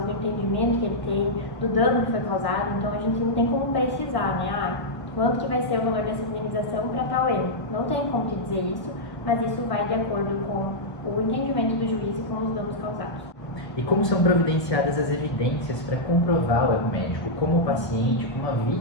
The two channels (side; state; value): right; late; 1.2 ms